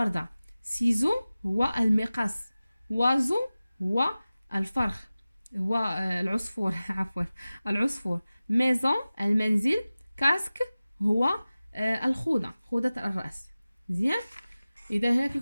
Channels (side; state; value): both; inverted; correlation -0.97